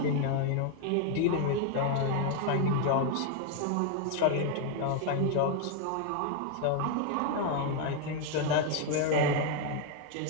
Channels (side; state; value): both; different; correlation 0.01